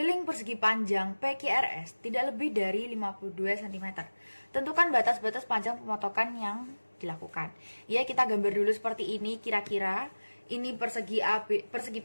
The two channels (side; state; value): both; inverted; correlation -1.00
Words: persegi panjang PQRS tidak lebih dari 52 cm. Tentukan batas-batas panjang pemotongan yang dilakukan. Ya, kita gambar dulu seperti ini kira-kira. Ini persegi